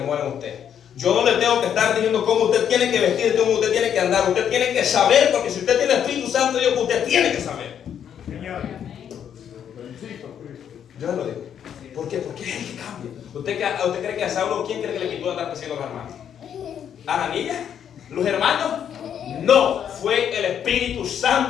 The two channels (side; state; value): right; quieter; 8.9 dB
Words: muere en usted. Yo no le tengo que estar diciendo cómo usted tiene que vestir, cómo usted tiene que andar. Usted tiene que saber, porque si usted tiene el Espíritu Santo de Dios, usted tiene que saber. Señor. Yo lo digo. ¿Por qué? Porque es el que cambia. ¿Usted cree que a Saulo, quién cree que le quitó andar persiguiendo a los hermanos? ¿Ananías? ¿Los hermanos? No, fue el Espíritu